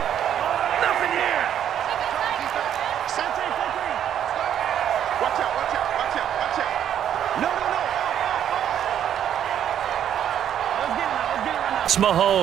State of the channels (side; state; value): left; quieter; 9.9 dB